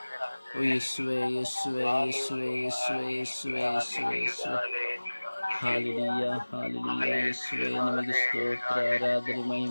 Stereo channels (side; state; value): both; inverted; correlation -1.00